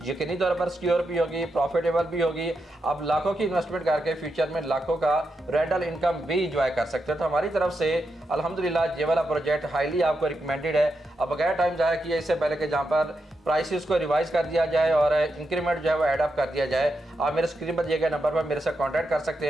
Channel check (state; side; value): normal; both; correlation 0.85